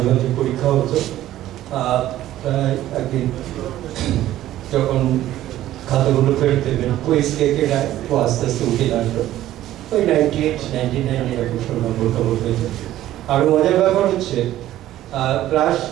মাঝে পরীক্ষা হতো। প্রায় একদিন যখন খাতাগুলো ফেরত দেবেন, কুইজ লেখে রায় ও আস্তে আস্তে উঠে দাঁড়ালো, ওই 98, 99 এরকম সব নম্বর খবর পেত। আরও মজার ব্যাপার হচ্ছে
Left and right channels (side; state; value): left; quieter; 13.7 dB